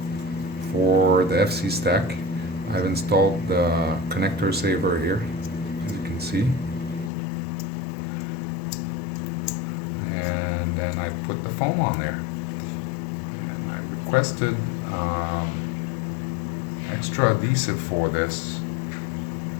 for the FC stack. I've installed the connector saver here, as you can see. And then I put the foam on there. And I requested extra adhesive for this,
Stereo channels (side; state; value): right; drops out; at 7.1 s